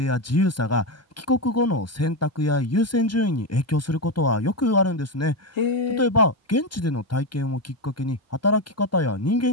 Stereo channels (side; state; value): both; normal; correlation 0.11